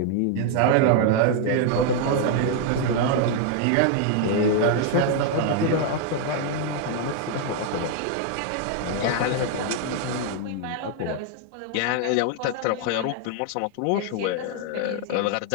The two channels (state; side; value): different; both; correlation 0.00